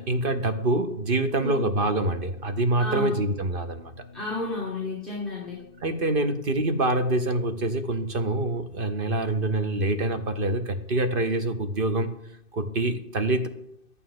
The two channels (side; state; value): left; late; 2.5 ms